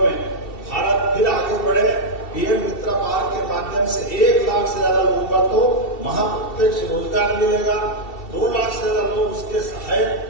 में भारत फिर आगे बढ़े। पीएम मित्र पार्क के माध्यम से 1 लाख से ज्यादा लोगों का तो वहां प्रत्यक्ष रोजगार मिलेगा। 2 लाख से ज्यादा लोग उसके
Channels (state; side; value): late; right; 2.7 ms